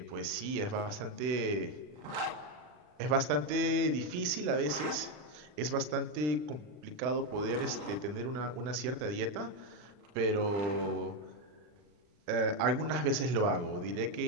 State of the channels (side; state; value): left; late; 40 ms